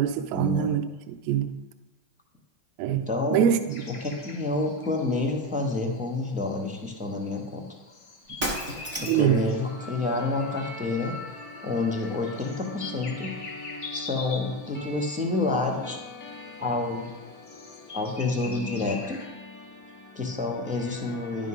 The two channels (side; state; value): left; late; 3.9 ms